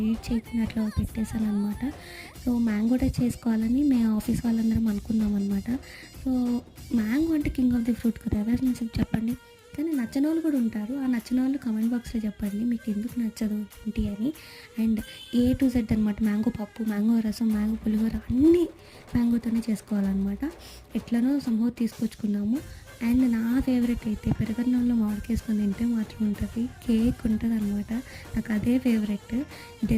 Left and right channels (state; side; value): identical; both; correlation 1.00